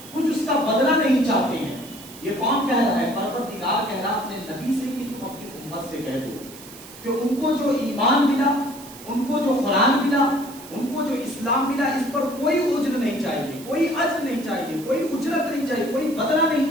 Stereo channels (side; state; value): right; noise; hiss, 17 dB below the sound